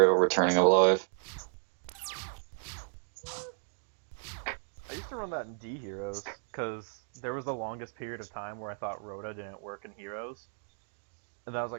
returning alive. I used to run that in D Heroes, because there was the longest period of time where I thought Rhoda didn't work in Heroes. And then I was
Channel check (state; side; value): silent; left; digital silence